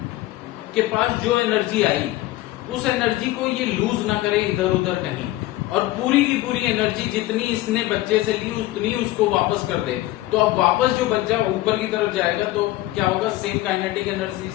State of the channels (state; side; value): quieter; right; 17.0 dB